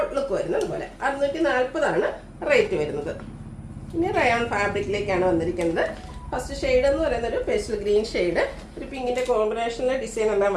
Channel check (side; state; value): both; identical; correlation 1.00